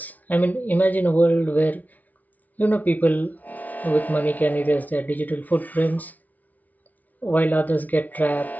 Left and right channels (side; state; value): right; late; 0.075 ms